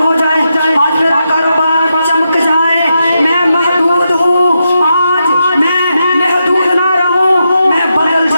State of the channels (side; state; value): both; inverted; correlation -0.85